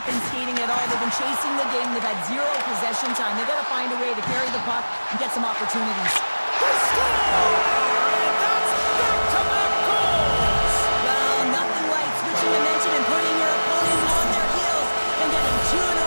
been skating at all. They've been chasing the game. They've had zero possession time. They've got to find a way to carry the puck and get some opportunities. They score! And that's back-to-back goals! Well, nothing like switching dimension and putting your opponent on their heels and getting two in a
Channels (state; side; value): inverted; both; correlation -1.00